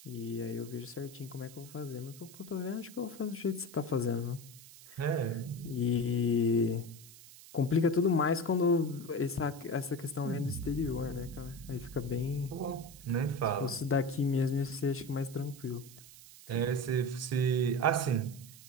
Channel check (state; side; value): noise; right; hiss, 19 dB below the sound